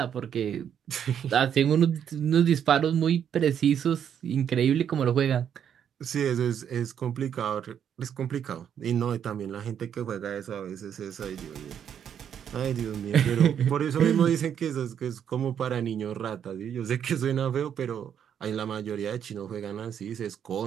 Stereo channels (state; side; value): quieter; left; 8.7 dB